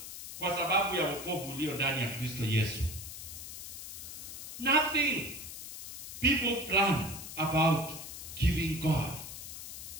kwa sababu ya wokovu ulio ndani ya Kristo Yesu. Nothing people plan about giving God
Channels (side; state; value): left; noise; hiss, 10 dB below the sound